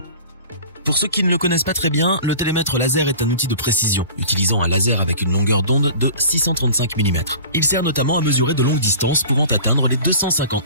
Pour ceux qui ne le connaissent pas très bien, le télémètre laser est un outil de précision, utilisant un laser avec une longueur d'onde de 635 mm. Il sert notamment à mesurer de longues distances pouvant atteindre les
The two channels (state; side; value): inverted; both; correlation -0.40